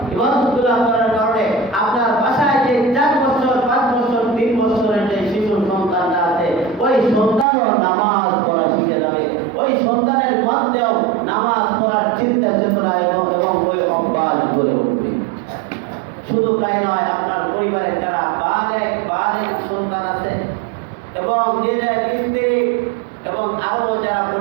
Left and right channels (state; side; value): drops out; left; at 7.5 s